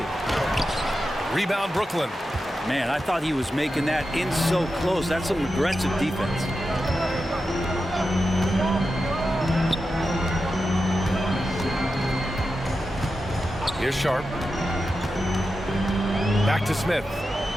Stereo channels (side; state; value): both; normal; correlation 0.90